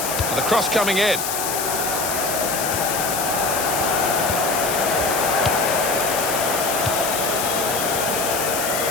And the cross coming in.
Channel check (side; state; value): left; noise; hiss, 3 dB below the sound